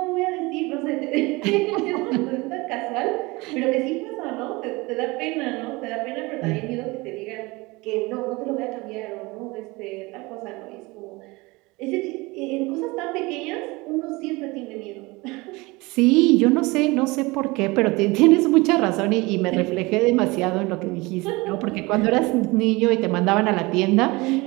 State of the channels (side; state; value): left; quieter; 23.5 dB